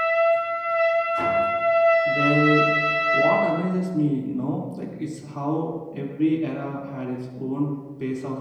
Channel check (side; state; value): both; identical; correlation 1.00